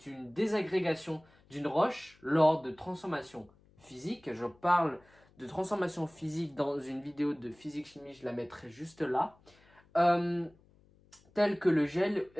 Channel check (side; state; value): left; noise; hum, 30 dB below the sound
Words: une désagrégation d'une roche lors de transformation physique. Je parle de transformation physique dans une vidéo de physique-chimie, je la mettrai juste là. Euh, Telles que le gel